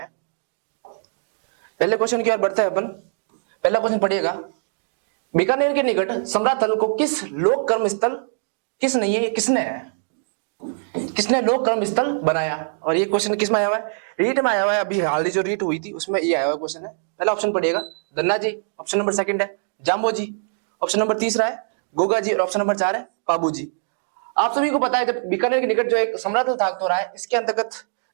पहले क्वेश्चन की ओर बढ़ते हैं अपन। पहला क्वेश्चन पढ़िएगा, बीकानेर के निकट समराथल को किस लोक कर्म स्थल किसने लोक कर्म स्थल बनाया? और ये क्वेश्चन किस में आया हुआ है? रीट में आया हुआ है। अभी हाल ही जो रीट हुई थी उसमें ये आया हुआ क्वेश्चन है। पहला ऑप्शन पढ़िएगा Dhanna ji, option number second है जाम्बो जी, ऑप्शन नंबर तीसरा है गोगा जी और ऑप्शन नंबर 4 है पाबू जी। आप सभी को पता है कि बीकानेर के निकट जो एक समराथल था तो रहा है, इसके अंतर्गत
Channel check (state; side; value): silent; left; digital silence